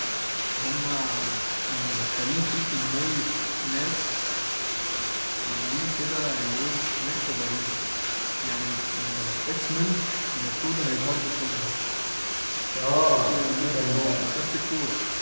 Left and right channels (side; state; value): both; inverted; correlation -1.00